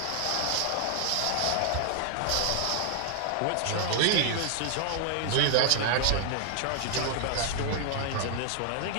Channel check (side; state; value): both; different; correlation 0.00